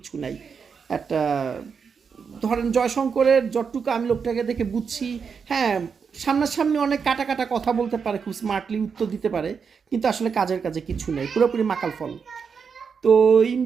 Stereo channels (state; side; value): quieter; left; 6.1 dB